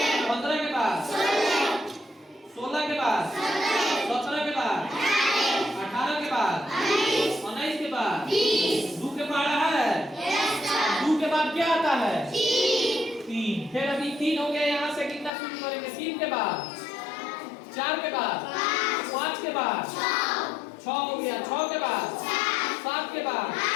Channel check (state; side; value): drops out; right; at 15.3 s